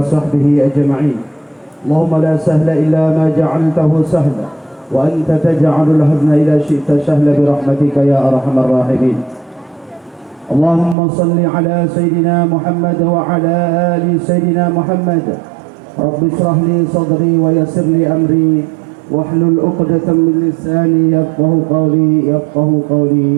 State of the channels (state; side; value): drops out; left; at 11.0 s